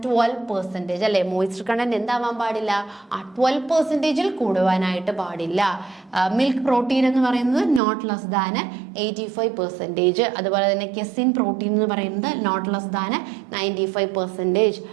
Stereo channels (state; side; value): drops out; left; at 7.8 s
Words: 12% അല്ലേ. മോയിസ്ചർ കണ്ടന്റ് എന്താവാൻ പാടില്ല? 12% കൂടുവാനായിട്ട് പാടില്ല. മിൽക്ക് പ്രോട്ടീൻ എന്ന് പറയുന്നത് നോട്ട് ലെസ് ദാൻ 85%. അതുപോലെ തന്നെ കെസിൻ പ്രോട്ടീൻ എന്ന് പറയുന്നത് നോട്ട് ലെസ് ദാൻ 95%.